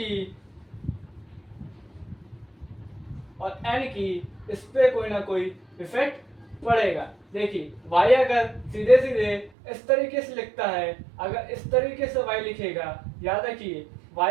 और n की, इस पे कोई ना कोई इफेक्ट पड़ेगा। देखिए y अगर सीधे इस तरीके से लिखता है, अगर इस तरीके से y लिखेगा, याद रखिए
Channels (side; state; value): left; drops out; at 9.5 s